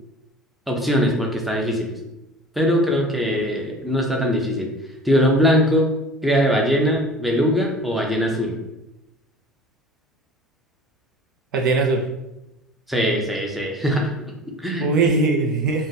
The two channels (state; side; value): normal; both; correlation 0.41